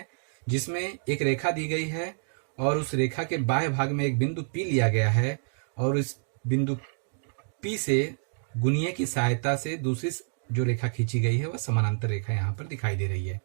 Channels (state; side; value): silent; left; digital silence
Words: जिसमें एक रेखा दी गई है और उस रेखा के बाएं भाग में एक बिंदु P लिया गया है और इस बिंदु P से गुनिया की सहायता से दूसरी जो रेखा खींची गई है वह समानांतर रेखा यहाँ पर दिखाई दे रही है।